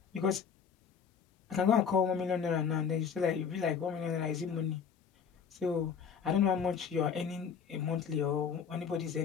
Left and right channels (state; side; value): quieter; right; 6.9 dB